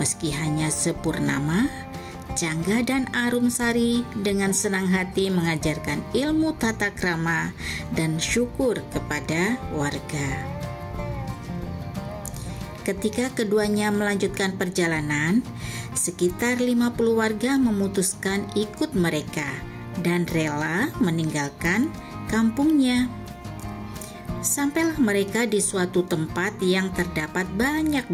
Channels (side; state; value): both; identical; correlation 1.00